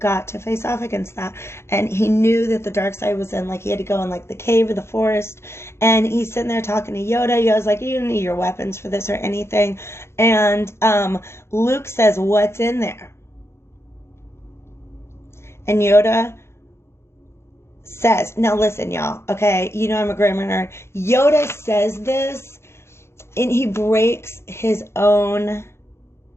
to face off against that. And he knew that the dark side was in, like, he had to go in, like, the cave or the forest. And he's sitting there talking to Yoda. Yoda's like, you don't need your weapons for this or anything. And Luke says, what's in there? And Yoda says, now listen, y'all, okay? You know I'm a grammar nerd. Yoda says this, and he breaks his own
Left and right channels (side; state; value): right; late; 0.13 ms